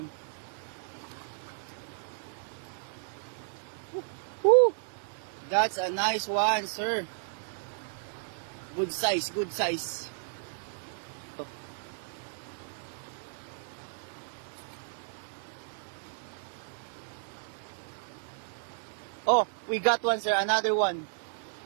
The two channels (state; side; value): silent; left; 56 dB below the other